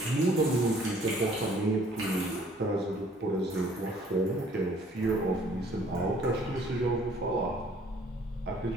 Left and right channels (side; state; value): both; normal; correlation 0.58